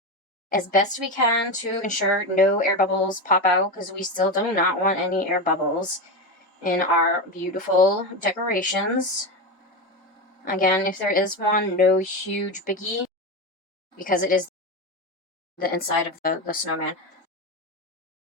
as best we can to ensure no air bubbles pop out, because we still do not want any air bubbles in our beautiful decorations. Again, if there is one, no huge biggie, because it is the inside of the snowman,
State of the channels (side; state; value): both; normal; correlation 0.17